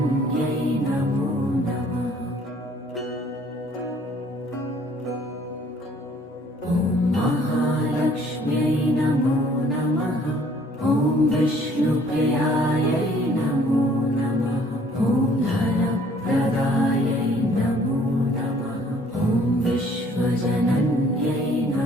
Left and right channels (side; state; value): both; normal; correlation 0.58